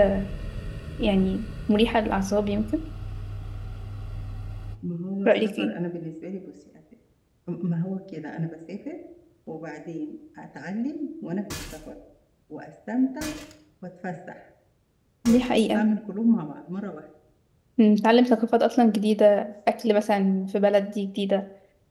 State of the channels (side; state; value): both; identical; correlation 1.00